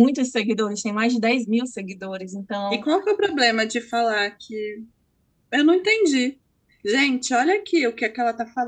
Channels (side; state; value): both; identical; correlation 1.00